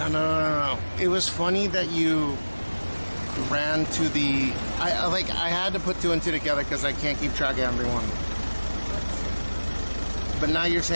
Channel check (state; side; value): inverted; both; correlation -1.00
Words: No. It was funny that you ran to the... I had to put two and two together because I can't keep track of everyone. But now you're